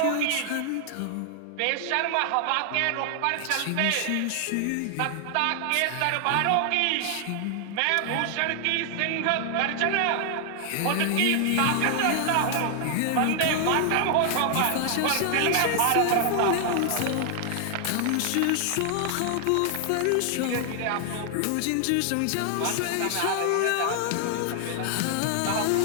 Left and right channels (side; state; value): both; different; correlation 0.00